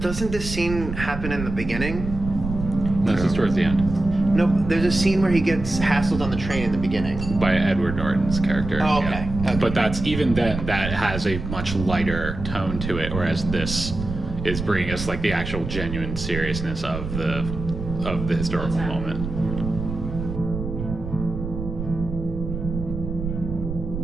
doesn't this scene happen in the beginning? This is towards the end No, there's a scene where he gets hassled on the train in the beginning. by Edward Norton's character. Oh, okay. Okay. But that's even then that has a much lighter tone to it, whereas this is bringing us like the actual genuine seriousness of the historical moment.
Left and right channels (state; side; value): noise; right; rumble, 7 dB below the sound